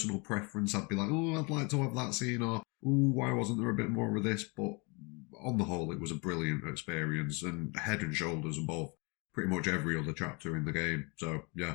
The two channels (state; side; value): quieter; right; 30.6 dB